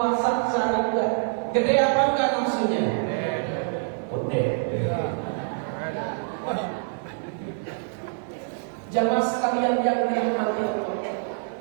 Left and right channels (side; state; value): left; silent; digital silence